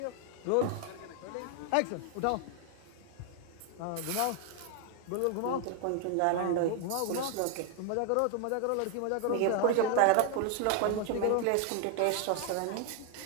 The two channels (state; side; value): different; both; correlation 0.00